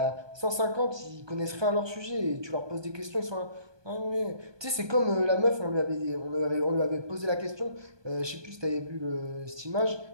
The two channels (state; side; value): late; left; 1.2 ms